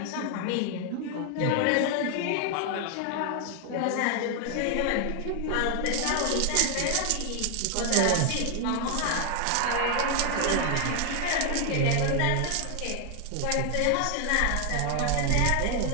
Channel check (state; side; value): different; both; correlation 0.00